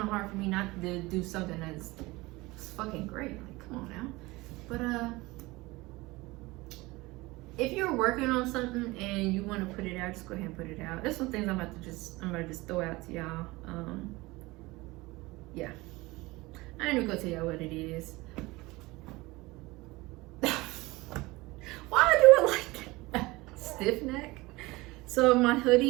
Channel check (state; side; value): quieter; left; 21.5 dB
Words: of hard for me not to do something that's fucking great. Like, come on now. But if you're working on something and you want to put it out, just go ahead and put it out. There's some things I'm gonna just throw out to y'all. Yeah. I ain't even gonna tell y'all what it is. Why I do it like that? Stiff neck. So my